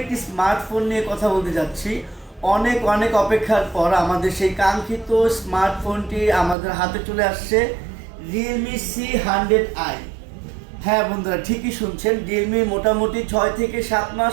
একটি স্মার্টফোন নিয়ে কথা বলতে যাচ্ছি। অনেক অনেক অপেক্ষার পর আমাদের সেই কাঙ্ক্ষিত স্মার্টফোনটি আমাদের হাতে চলে আসছে, রিয়েলমি C100i। হ্যাঁ বন্ধুরা, ঠিকই শুনছেন, রিয়েলমি মোটামুটি 6 থেকে 7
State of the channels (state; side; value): drops out; left; at 6.6 s